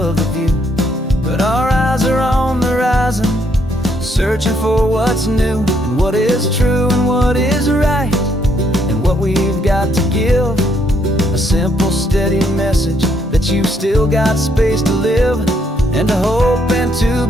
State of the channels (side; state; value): both; normal; correlation 0.72